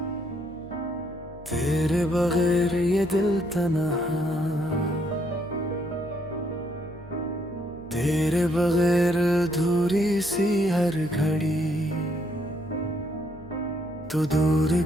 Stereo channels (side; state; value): right; noise; hum, 19 dB below the sound